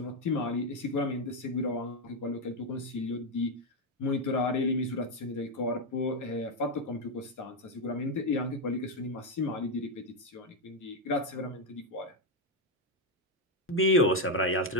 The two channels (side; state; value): both; normal; correlation 0.04